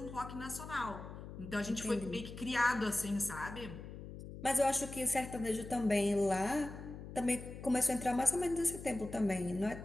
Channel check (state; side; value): noise; left; hum, 11 dB below the sound